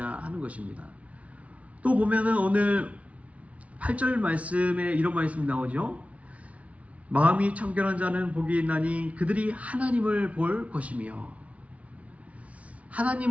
하는 것입니다. 또 보면은 오늘 8절 말씀에 이런 말씀이 나오죠. 마음이 청결한 자는 복이 있나니 그들이 하나님을 볼 것이며.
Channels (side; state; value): left; late; 0.065 ms